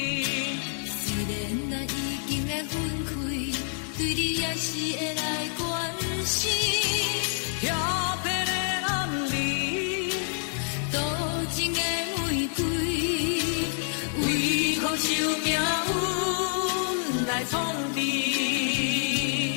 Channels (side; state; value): right; silent; digital silence